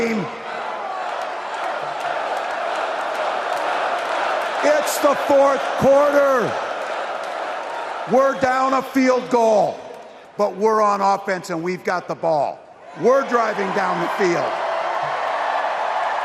It's the fourth quarter. We're down a field goal, but we're on offense and we've got the ball. We're driving down the field.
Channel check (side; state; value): both; identical; correlation 1.00